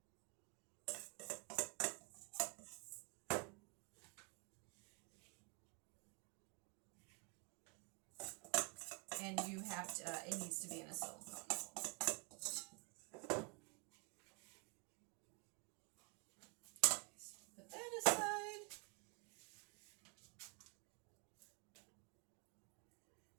And you have to, it needs to be in a silicone mold. Put that aside.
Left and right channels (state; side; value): quieter; left; 31.6 dB